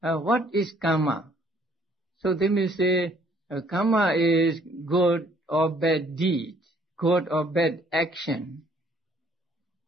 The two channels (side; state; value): both; normal; correlation 0.62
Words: is karma? So they may say, karma is good or bad deed, good or bad action.